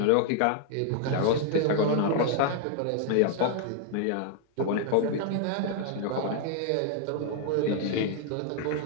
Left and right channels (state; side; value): different; both; correlation 0.00